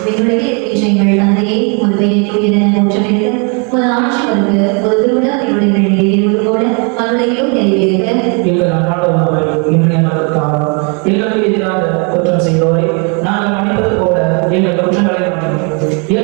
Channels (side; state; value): left; quieter; 35.4 dB